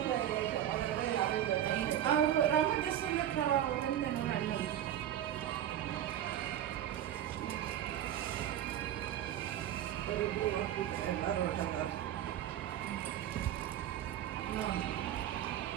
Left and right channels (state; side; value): quieter; left; 11.4 dB